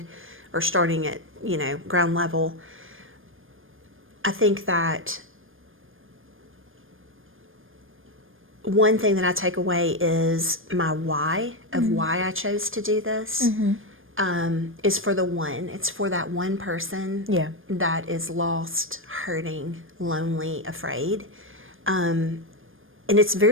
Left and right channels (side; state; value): left; late; 0.59 ms